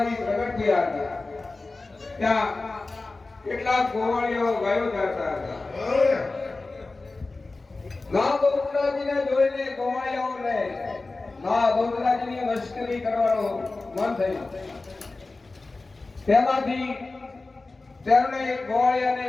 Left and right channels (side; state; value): right; quieter; 3.4 dB